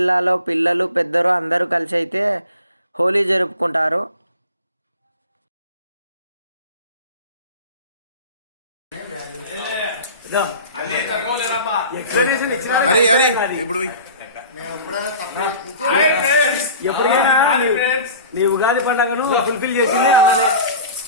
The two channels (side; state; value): both; inverted; correlation -0.40